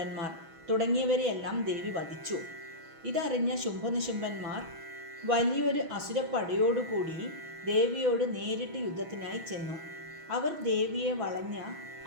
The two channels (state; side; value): late; left; 6.2 ms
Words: തുടങ്ങിയവരെയെല്ലാം ദേവി വധിച്ചു. ഇതറിഞ്ഞ ശുംഭനിശുംഭന്മാർ വലിയൊരു അസുരപ്പടയോടുകൂടി ദേവിയോട് നേരിട്ട് യുദ്ധത്തിനായി ചെന്നു. അവർ ദേവിയെ വളഞ്ഞ